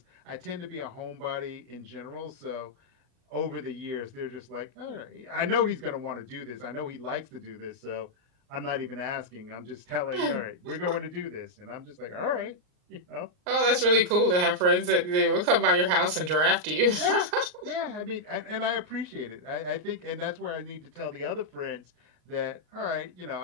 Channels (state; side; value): late; left; 39 ms